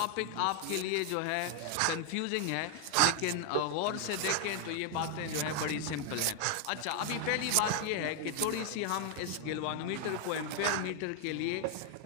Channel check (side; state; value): both; different; correlation 0.00